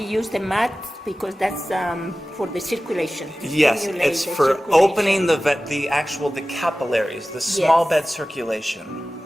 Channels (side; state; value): both; normal; correlation 0.96